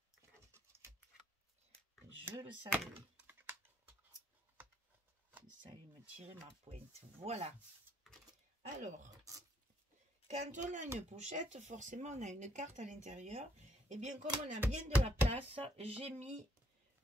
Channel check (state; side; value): normal; both; correlation 0.69